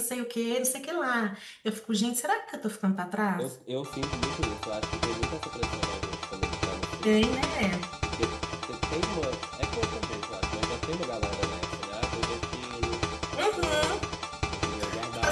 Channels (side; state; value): both; identical; correlation 1.00